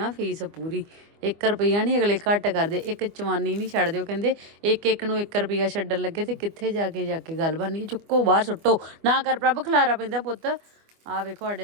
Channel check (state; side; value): late; left; 25 ms